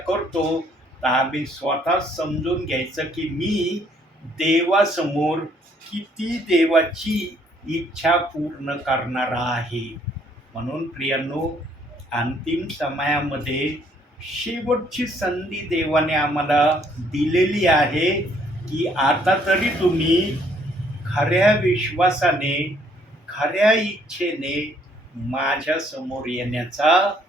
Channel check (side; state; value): both; normal; correlation 0.65